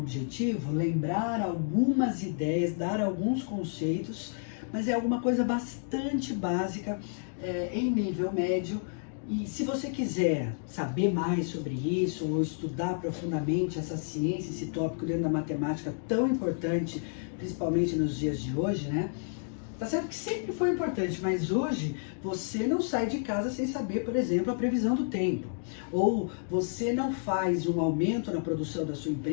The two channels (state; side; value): silent; right; digital silence